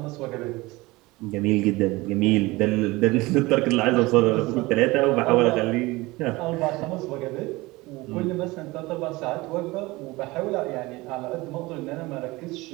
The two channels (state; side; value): quieter; left; 21.5 dB